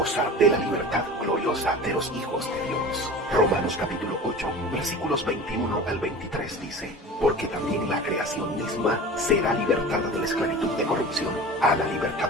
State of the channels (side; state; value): both; normal; correlation 0.36